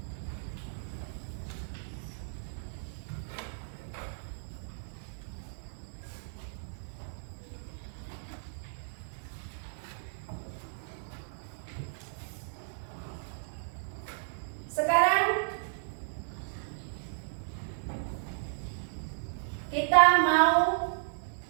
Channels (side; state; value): left; silent; digital silence